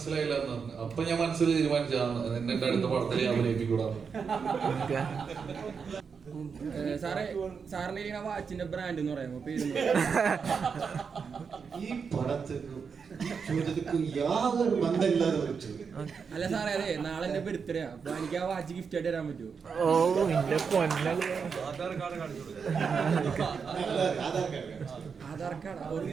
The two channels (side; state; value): left; quieter; 5.9 dB